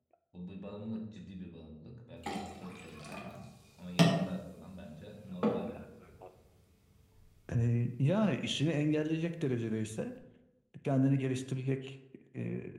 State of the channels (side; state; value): both; identical; correlation 1.00